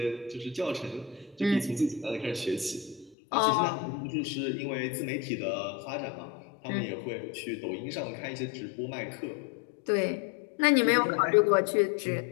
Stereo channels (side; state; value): right; drops out; at 3.2 s